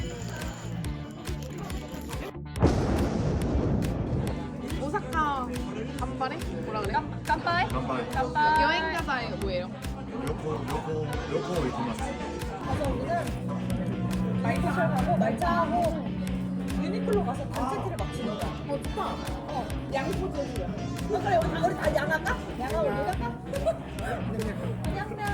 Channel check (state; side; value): identical; both; correlation 1.00